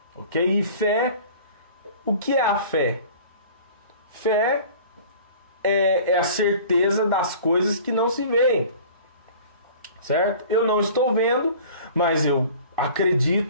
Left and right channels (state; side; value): inverted; both; correlation -0.45